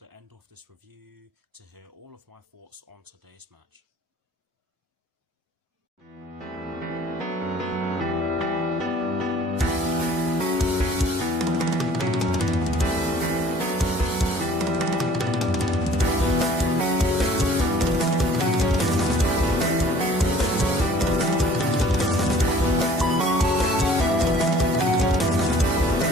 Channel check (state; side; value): normal; both; correlation 0.52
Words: end of this review to hear all of my thoughts on today's match.